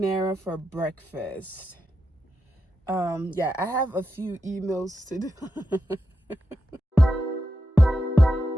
for breakfast. Yeah, I have a few emails to do.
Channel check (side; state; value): both; normal; correlation 0.87